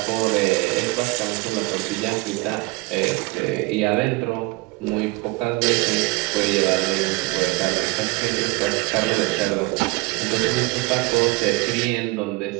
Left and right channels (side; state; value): left; quieter; 24.1 dB